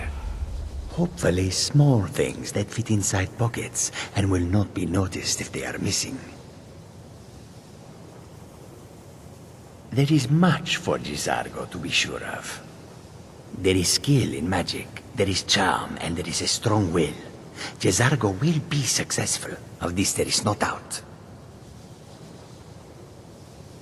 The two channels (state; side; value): identical; both; correlation 1.00